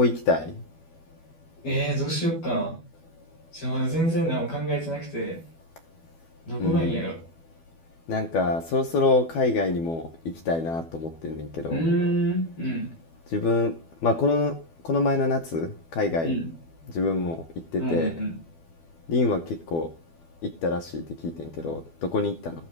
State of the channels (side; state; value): right; late; 12 ms